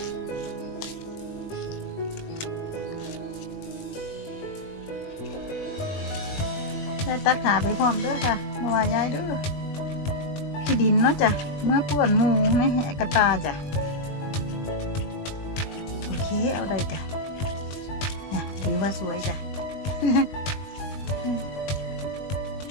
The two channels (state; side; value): late; right; 20 ms